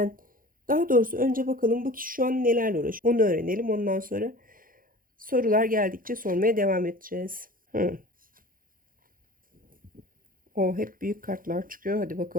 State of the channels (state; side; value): late; left; 0.41 ms